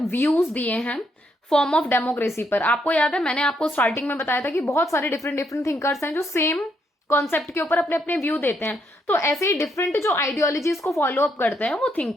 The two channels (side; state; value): both; normal; correlation 0.75